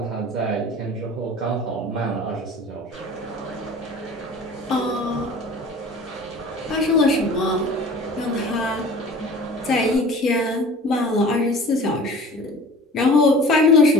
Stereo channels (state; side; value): normal; both; correlation 0.43